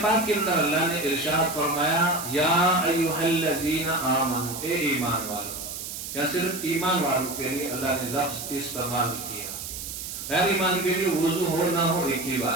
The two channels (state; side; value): noise; right; hiss, 8 dB below the sound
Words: پاک کے اندر اللہ نے ارشاد فرمایا یا ایھا الذین آمنوا، اے ایمان والو. یا صرف ایمان والوں کے لیے اللہ نے لفظ استعمال کیا، غیر ایمان کے لیے وضو ہو نہ ہو ایک ہی